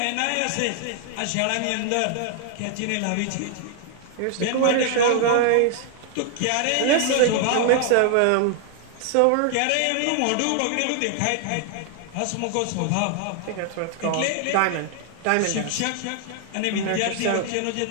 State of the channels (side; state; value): both; different; correlation 0.00